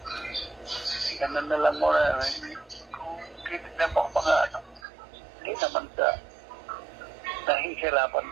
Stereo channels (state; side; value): drops out; left; at 4.8 s